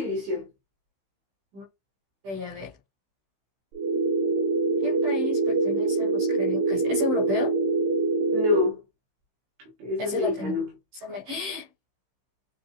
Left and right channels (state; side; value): late; left; 15 ms